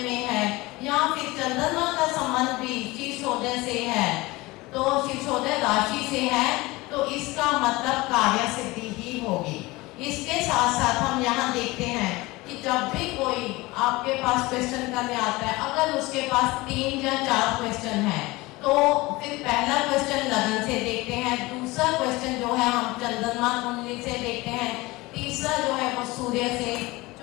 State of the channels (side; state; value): right; quieter; 21.5 dB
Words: है या फिर चंद्रमा का संबंध भी शीर्षोदय से है, तो शीर्षोदय राशि से है, तो इसका मतलब कार्य सिद्धि ही होगी। इसके साथ साथ हम यहाँ देखते हैं कि जब भी कोई आपके पास क्वेश्चन करने आता है, अगर उसके पास 3 या 4 क्वेश्चन है तो फिर पहला क्वेश्चन लगन से देखते हैं, दूसरा क्वेश्चन जो है हम चंद्रमा कुंडली से देखते हैं, तीसरा जो है वो सूर्य से,